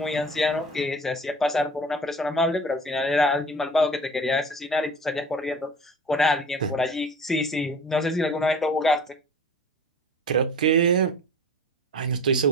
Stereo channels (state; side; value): normal; both; correlation 0.40